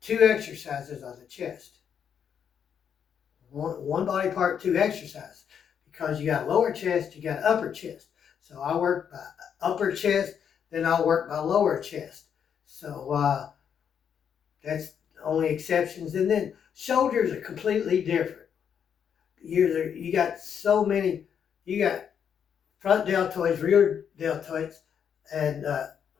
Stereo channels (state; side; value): quieter; right; 7.9 dB